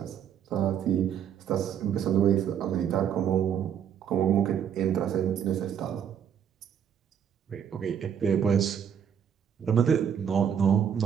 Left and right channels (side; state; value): left; quieter; 8.5 dB